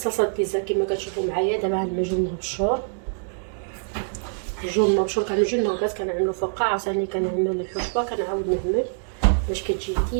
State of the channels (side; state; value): left; silent; digital silence